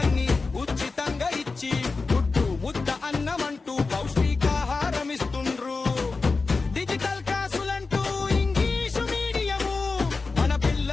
ఉచితంగా ఇచ్చి గుడ్డు ముద్ద అన్నమంటూ పౌష్టికాహారం ఇస్తుండ్రు. డిజిటల్ క్లాసులంటూ ఇంగ్లీషు మీడియము మన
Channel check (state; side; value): quieter; right; 4.1 dB